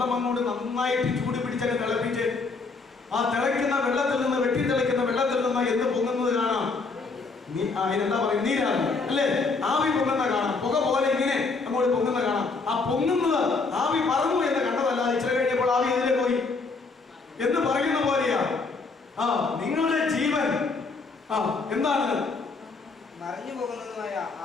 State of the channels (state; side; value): quieter; right; 4.1 dB